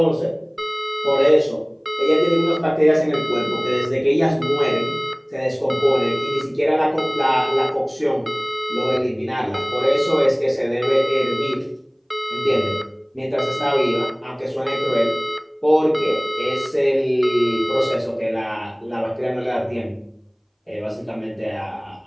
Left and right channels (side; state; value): both; identical; correlation 1.00